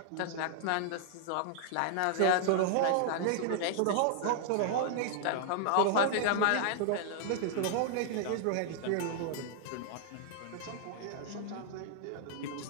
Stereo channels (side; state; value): both; different; correlation -0.01